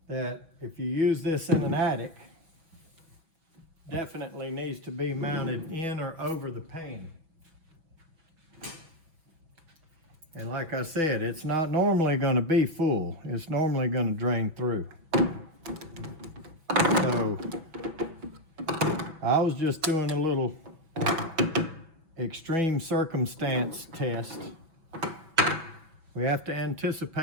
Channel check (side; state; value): left; late; 6.1 ms